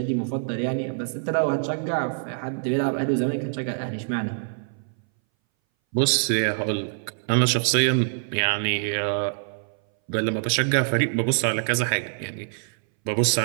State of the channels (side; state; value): left; silent; 60 dB below the other